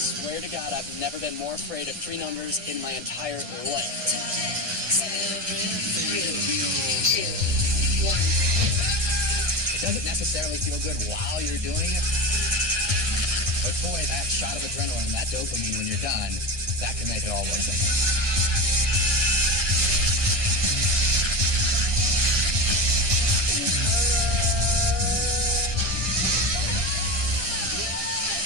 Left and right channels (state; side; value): late; left; 1.6 ms